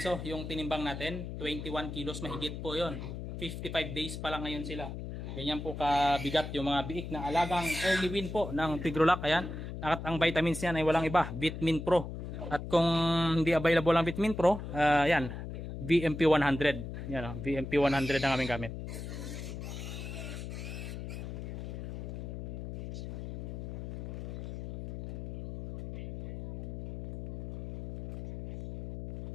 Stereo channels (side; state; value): left; noise; hum, 7 dB below the sound